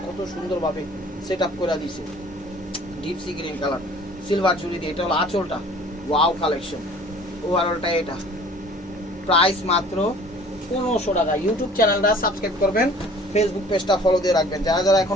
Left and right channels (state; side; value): normal; both; correlation 0.50